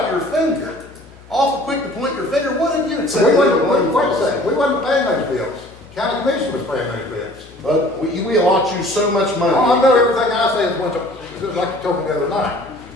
your finger. Awful quick to point your finger. What have you We said? wasn't, wait a second, we wasn't paying those bills. County commission was paying those bills. But we allot you so much money. Oh, I know everything I say is one, just like you told me the other night.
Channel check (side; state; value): left; noise; hum, 23 dB below the sound